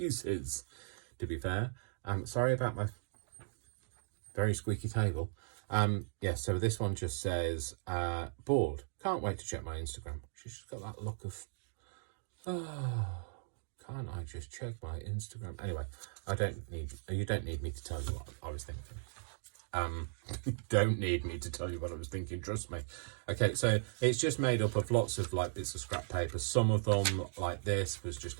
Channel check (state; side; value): silent; left; digital silence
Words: to be fair. Sorry about my very squeaky table. Yeah, so this one just says bored, can't wait to check my Instagram. She's just got that look of, oh, can't I just check my Instagram? Anyway, you don't need me to tell you what I was thinking. Don't need me to tell you what I was thinking, trust me. Okay, so it's just made up of lots of like bits of scrap paper. Some of them, like this, was just